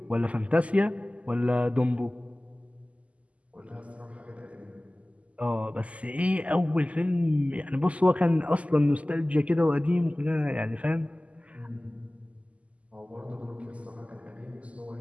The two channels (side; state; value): left; late; 0.066 ms